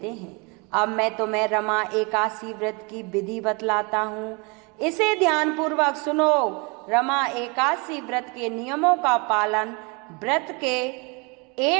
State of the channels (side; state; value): left; quieter; 30.3 dB